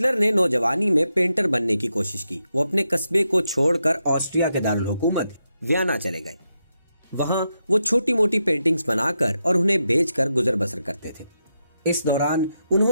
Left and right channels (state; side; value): inverted; both; correlation -0.85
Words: ने नौजवानी में पेंटर बनने की कोशिश की। वो अपने कस्बे को छोड़कर ऑस्ट्रिया के दारुल हुकूमत वियना चले गए। वहां वो छोटी मोटी पेंटिंग्स बनाकर और उन्हें बेचकर गुजर बसर करते थे। इस दौरान